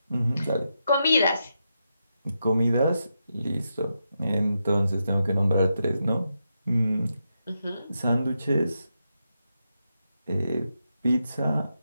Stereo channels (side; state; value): both; inverted; correlation -0.85